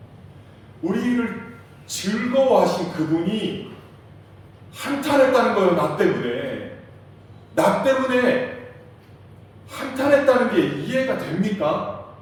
우리를 즐거워하신 그분이 한탄했다는 거예요. 나 때문에 한탄했다는 게 이해가 됩니까?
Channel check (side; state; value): both; identical; correlation 1.00